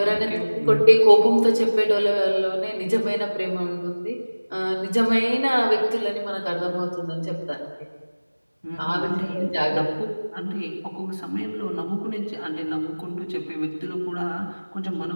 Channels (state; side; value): inverted; both; correlation -1.00